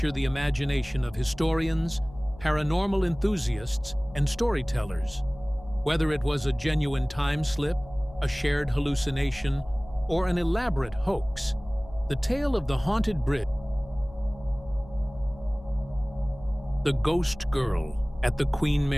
the imagination of historians, paranormal enthusiasts, and storytellers. Whether it was a genuine time slip, a shared hallucination, or an elaborate hoax, the tale of the haunted bridge, the ghost girl at the Queen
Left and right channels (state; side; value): noise; left; hum, 19 dB below the sound